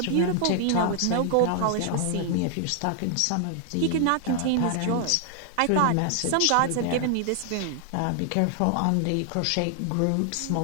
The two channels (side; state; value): both; different; correlation 0.00